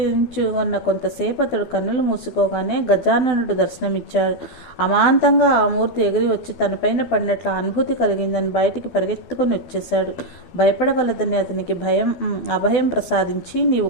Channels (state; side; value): late; right; 12 ms